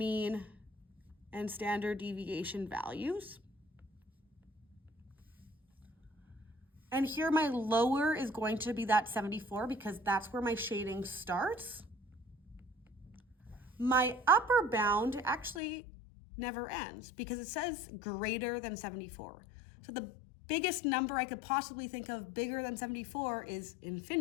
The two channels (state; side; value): drops out; right; at 15.6 s